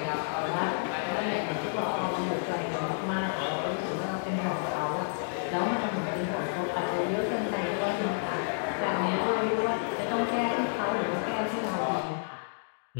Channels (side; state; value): right; silent; digital silence